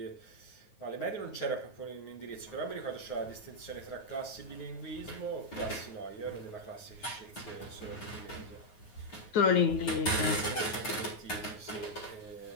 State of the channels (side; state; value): right; late; 9.4 ms